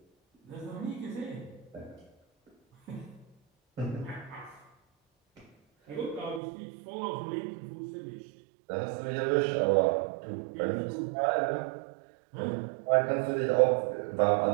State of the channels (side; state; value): left; drops out; at 6.4 s